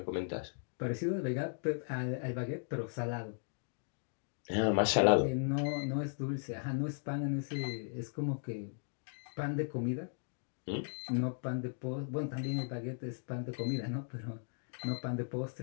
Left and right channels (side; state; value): right; silent; 53 dB below the other